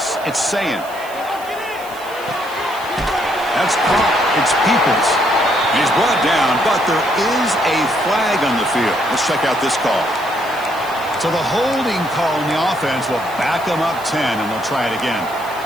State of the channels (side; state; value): right; noise; hiss, 19 dB below the sound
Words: It's Sayin. That's caught. It's Peoples. He's brought down, but there is a flag on the field. Let's check out this call. So the holding call on the offense will back them up 10, and they'll try it again.